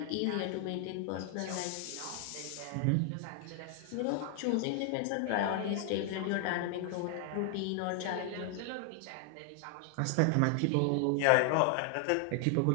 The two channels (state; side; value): different; both; correlation 0.00